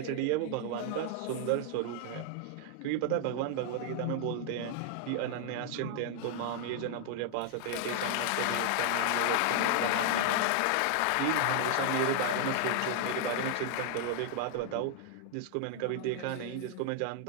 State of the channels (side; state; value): both; different; correlation 0.00